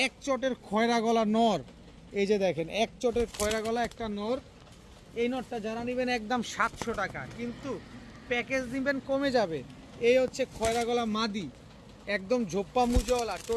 এক চটের খয়রা গলা নর, এই যে দেখেন এক চটের খয়রা গলা একটা নর। এই নরটা যারা নিবেন একদম 700 টাকা, কিন্তু প্যাকেজ নিবেন কমে যাবে। এই হচ্ছে খয়রা গলা মাদি, একদম ঝোপ্পা মুজওয়ালা।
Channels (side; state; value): both; identical; correlation 1.00